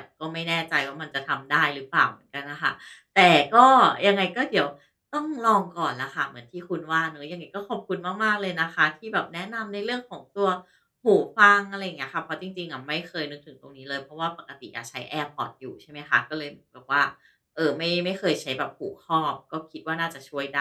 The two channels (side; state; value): both; identical; correlation 1.00